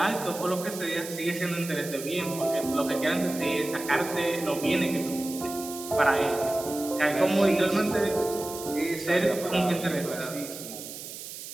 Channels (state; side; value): noise; right; hiss, 11 dB below the sound